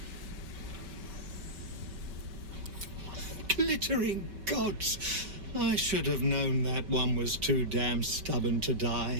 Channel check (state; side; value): late; left; 5.2 ms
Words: Glittering gods! I should have known that one was too damn stubborn to